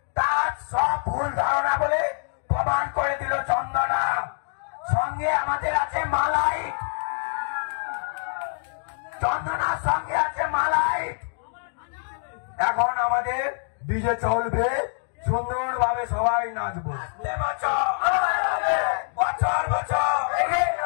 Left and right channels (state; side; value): silent; right; digital silence